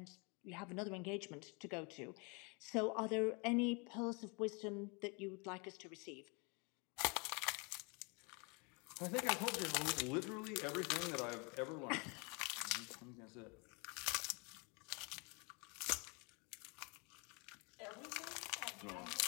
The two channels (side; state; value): right; quieter; 31.8 dB